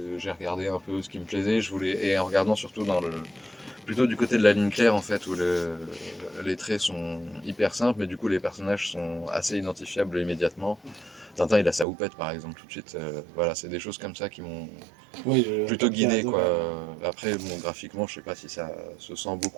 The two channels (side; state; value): left; drops out; at 11.9 s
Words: regardé un peu ce qui me plaisait. Et en regardant surtout plutôt du côté de la ligne claire en fait, où les traits sont hyper simples, mais du coup les personnages sont assez identifiables immédiatement. Tintin, il a sa houppette par exemple tout de suite. Voilà, c'est des choses comme ça qui m'ont Oui, plutôt guidé quoi. ouais. Après, bon, graphiquement, je sais pas si ça se sent